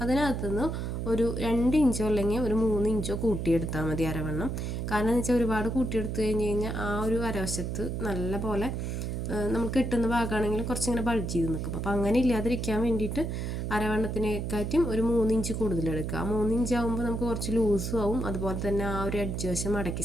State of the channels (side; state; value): right; noise; hum, 3 dB below the sound